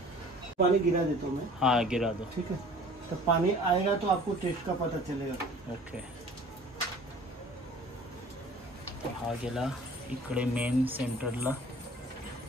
पानी गिरा देता हूँ मैं. हाँ गिरा दो. ठीक है, तो पानी आएगा तो आपको टेस्ट का पता चलेगा. ओके, हा गेला इकडे मेन सेंटरला.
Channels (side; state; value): both; normal; correlation 0.48